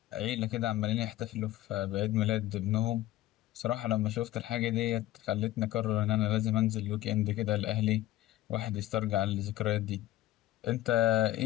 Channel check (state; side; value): quieter; right; 15.2 dB